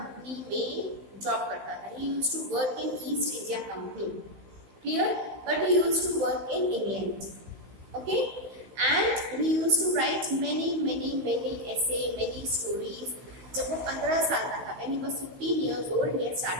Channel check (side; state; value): left; late; 16 ms